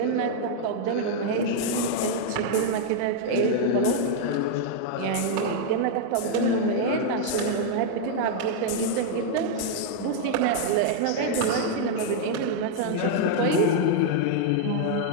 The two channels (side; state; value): both; different; correlation 0.00